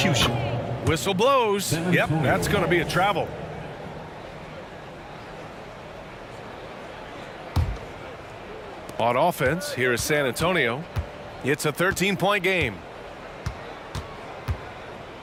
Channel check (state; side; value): identical; both; correlation 1.00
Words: Whistle blows. Yep, that's going to be a travel. On offense, here is San Antonio. It's a 13-point game.